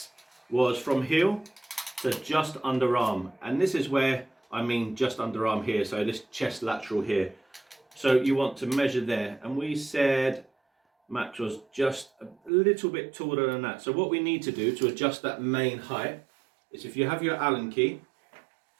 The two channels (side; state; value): left; drops out; at 12.5 s